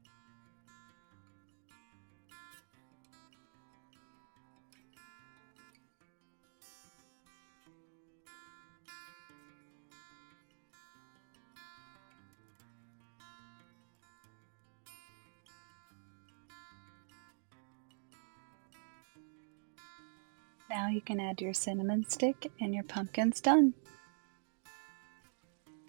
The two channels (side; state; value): left; silent; digital silence